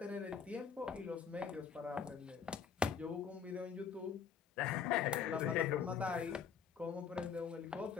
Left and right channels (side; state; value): right; quieter; 7.0 dB